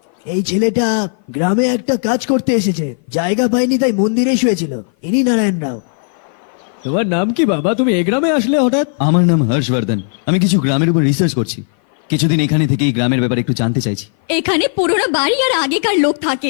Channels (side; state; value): right; silent; 56 dB below the other